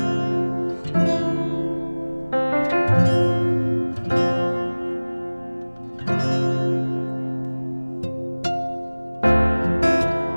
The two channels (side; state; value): both; inverted; correlation -1.00